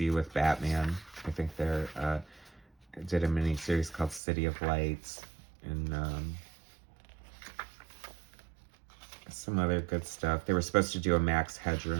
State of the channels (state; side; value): drops out; left; at 4.2 s